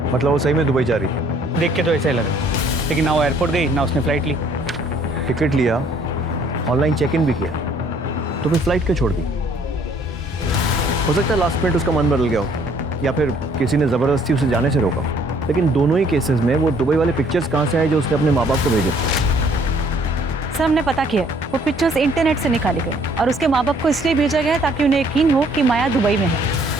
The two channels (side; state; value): both; normal; correlation 0.61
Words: वो सही में दुबई जा रही है? देख के तो ऐसा ही लगा, लेकिन ना वो एयरपोर्ट गई ना उसने फ्लाइट ली। टिकट लिया, ऑनलाइन चेक इन भी किया, तो फिर फ्लाइट क्यों छोड़ दी? हो सकता है लास्ट मिनट उसका मन बदल गया हो, या फिर किसी ने ज़बरदस्ती उसे जाने से रोका। लेकिन दोनों ही केसेस में वो दुबई वाले पिक्चर्स कहाँ से आए जो उसने अपने माँ बाप को भेजे? सर हमने पता किया, वो पिक्चर्स इंटरनेट से निकाले गए और उसके माँ बाप को इसलिए भेजा गया ताकि उन्हें यकीन हो कि माया दुबई में है।